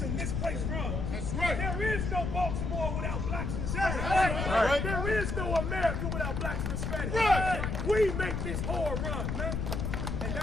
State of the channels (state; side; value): noise; left; rumble, 2 dB below the sound